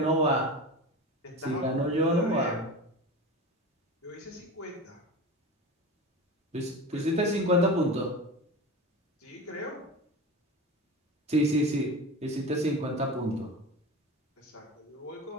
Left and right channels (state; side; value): normal; both; correlation 0.29